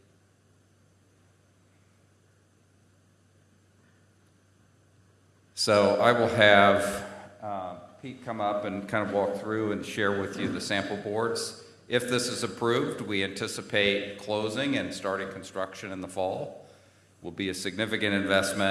So I will have Pete come up and kind of walk through and share with you the sample boards. If this is approved, we anticipate closing and starting construction in the fall. Will be a significant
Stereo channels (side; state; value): both; identical; correlation 1.00